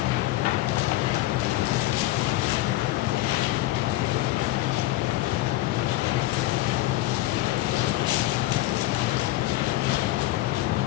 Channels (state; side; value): quieter; right; 17.1 dB